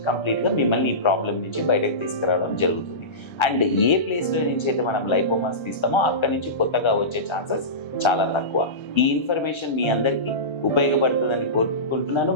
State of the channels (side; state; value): right; late; 1.3 ms